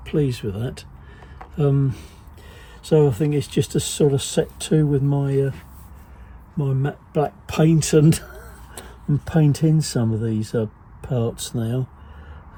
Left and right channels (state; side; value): identical; both; correlation 1.00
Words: pleased with that. So I think it's just a sort of set to with my my matte black paint and paint in some of these parts now.